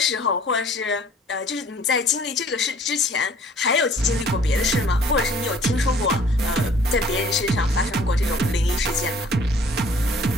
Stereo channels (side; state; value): both; normal; correlation 0.54